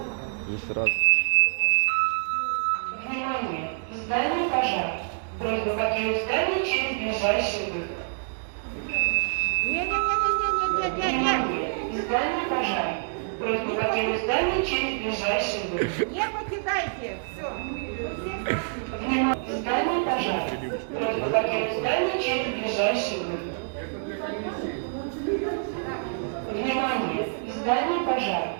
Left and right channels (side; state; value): left; silent; digital silence